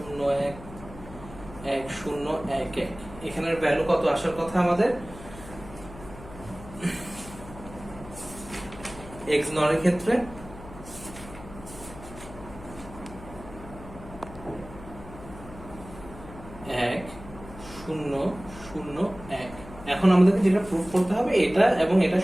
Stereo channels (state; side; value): noise; left; hum, 16 dB below the sound